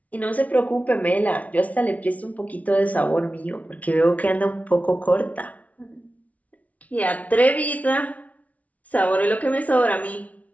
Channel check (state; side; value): late; right; 0.069 ms